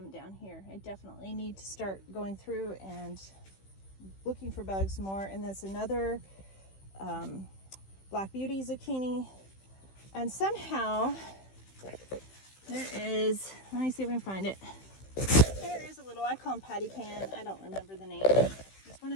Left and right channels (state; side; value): late; right; 15 ms